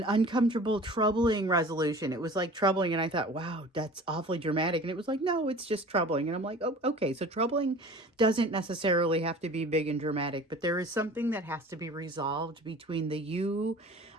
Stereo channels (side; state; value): both; normal; correlation 0.42